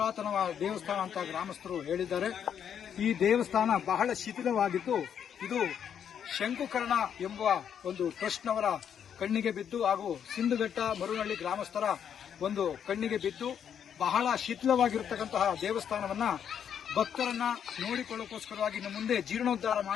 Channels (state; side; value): quieter; right; 8.4 dB